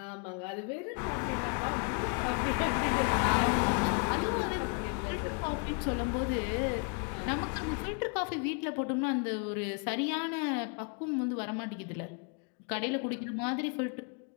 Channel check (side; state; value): right; quieter; 37.2 dB